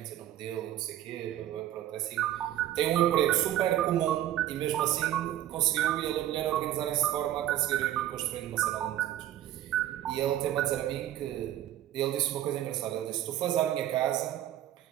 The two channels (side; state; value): left; quieter; 12.6 dB